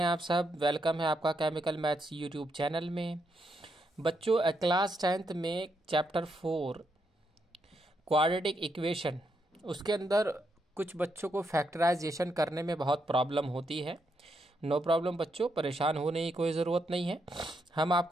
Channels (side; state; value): both; normal; correlation 0.79